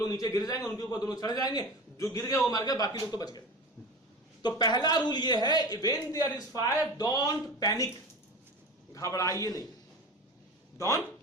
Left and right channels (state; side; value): normal; both; correlation 0.32